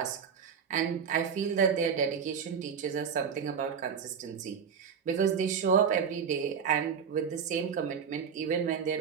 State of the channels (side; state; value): left; quieter; 6.9 dB